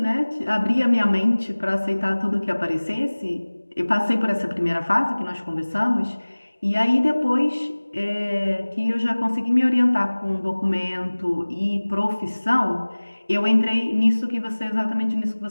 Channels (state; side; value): inverted; both; correlation -1.00